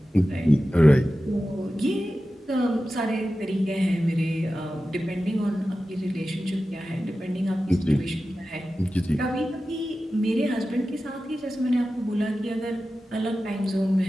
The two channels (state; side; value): normal; both; correlation 0.94